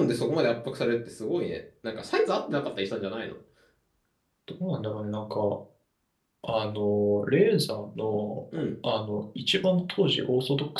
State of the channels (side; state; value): both; identical; correlation 1.00